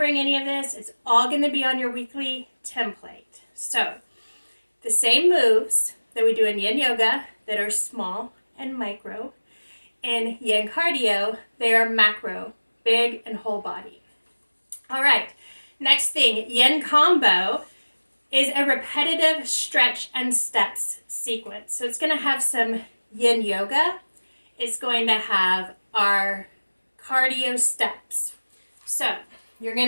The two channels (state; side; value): inverted; both; correlation -1.00